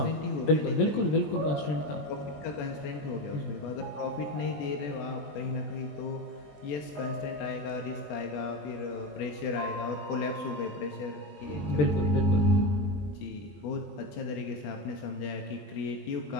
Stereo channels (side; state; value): right; late; 20 ms